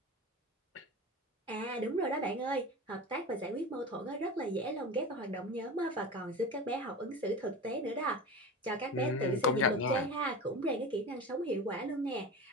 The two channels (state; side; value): normal; both; correlation 0.29